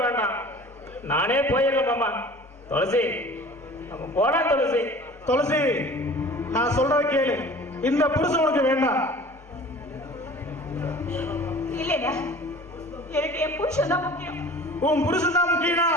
வேண்டாம், நானே போயிடல மாமா. துளசி, நம்ம போலாம் துளசி. துளசி, நான் சொல்றத கேளு. இந்த புருஷன் உனக்கு வேண்டாம். இல்லையா, எனக்கு என் புருஷன் தான் முக்கியம். உன் புருஷன் தான் முக்கியம்னா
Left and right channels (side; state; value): both; normal; correlation 0.44